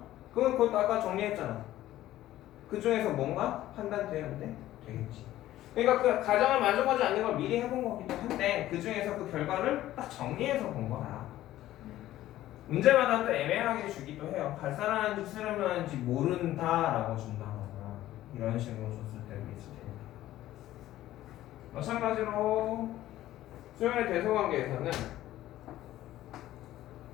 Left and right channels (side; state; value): right; quieter; 14.3 dB